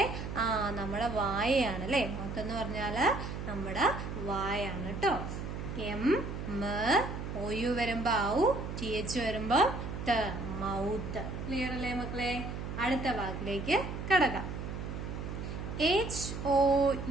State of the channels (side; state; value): right; noise; hum, 6 dB below the sound